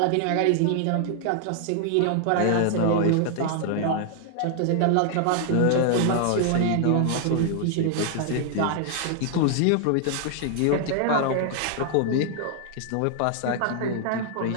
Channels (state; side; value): different; both; correlation 0.00